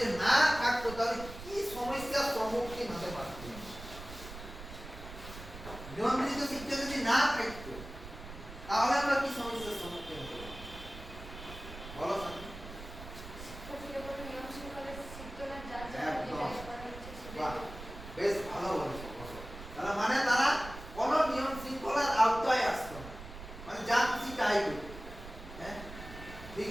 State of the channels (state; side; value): noise; right; rumble, 13 dB below the sound